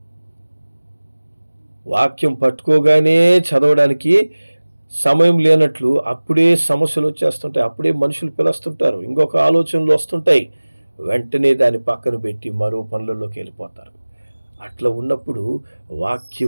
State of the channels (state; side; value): inverted; both; correlation -1.00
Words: వాక్యం పట్టుకోగానే చదవడానికి సమయం లేనట్లు అప్పుడే సమస్యలు వచ్చేస్తుంటాయి, అప్పుడే మనుషులు పిలుస్తుంటారు, ఇంకొక ఆలోచనలు వస్తుంటాయి, వెంటనే దాన్ని పక్కన పెట్టి మరో పనులలోకి వెళ్ళిపోతారు. అట్లా ఉన్నప్పుడు